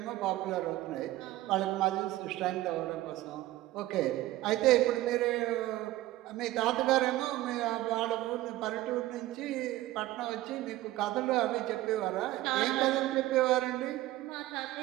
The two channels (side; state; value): left; quieter; 16.3 dB